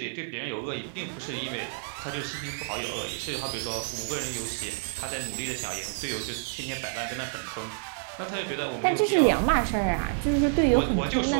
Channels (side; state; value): left; silent; digital silence